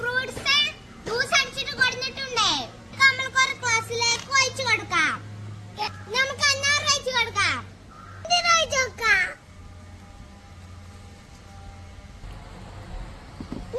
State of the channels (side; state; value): both; identical; correlation 1.00